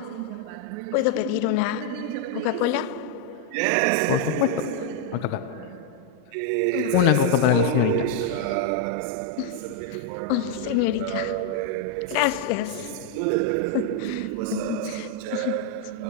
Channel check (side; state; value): both; different; correlation 0.00